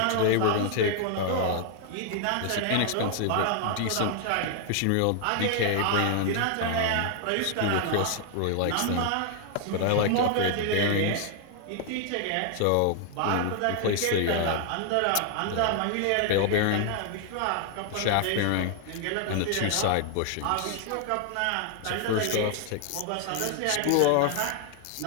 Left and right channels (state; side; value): different; both; correlation 0.00